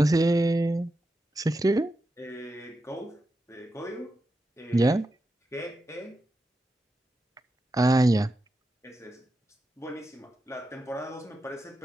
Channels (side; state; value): both; normal; correlation 0.89